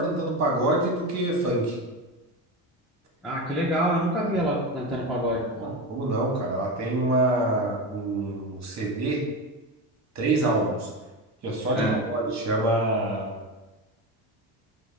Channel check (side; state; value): both; normal; correlation 0.20